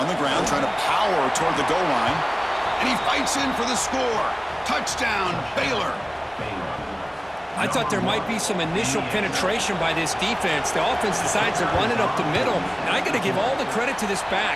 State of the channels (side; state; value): both; identical; correlation 1.00